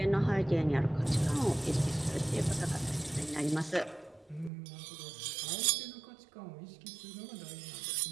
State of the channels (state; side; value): drops out; left; at 4.5 s